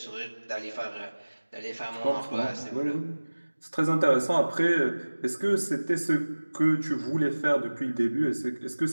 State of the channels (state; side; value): inverted; both; correlation -1.00